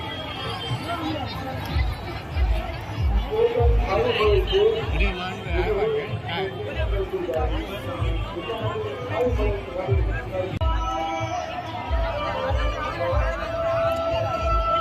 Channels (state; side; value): identical; both; correlation 1.00